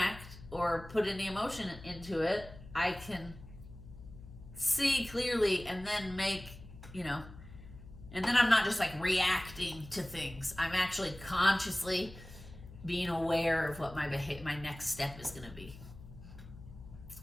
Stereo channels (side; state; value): left; noise; hum, 17 dB below the sound